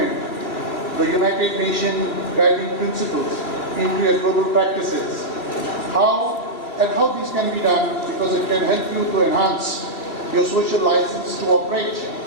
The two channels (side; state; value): right; late; 2.9 ms